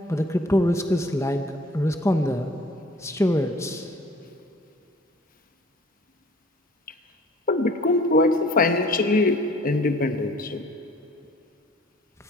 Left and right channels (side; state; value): both; normal; correlation 0.52